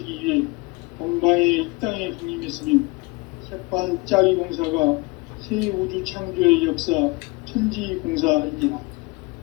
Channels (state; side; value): quieter; right; 25.5 dB